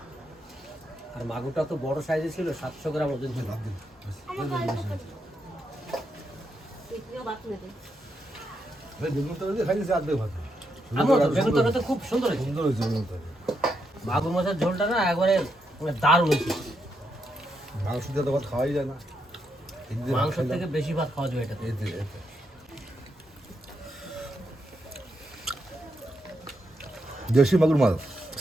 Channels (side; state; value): both; normal; correlation 0.81